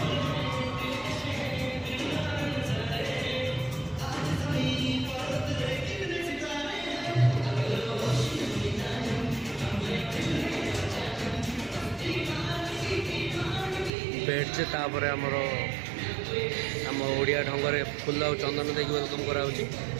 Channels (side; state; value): left; drops out; at 13.9 s